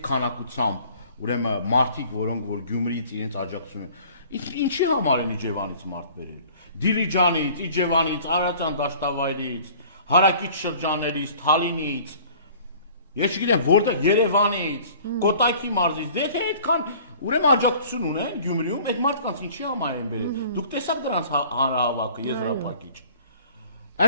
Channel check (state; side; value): inverted; both; correlation -0.50